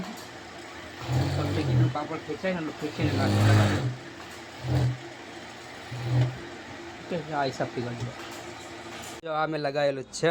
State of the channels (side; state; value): both; identical; correlation 1.00